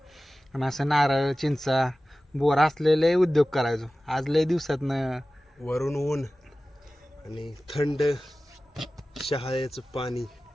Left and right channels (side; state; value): both; normal; correlation 0.96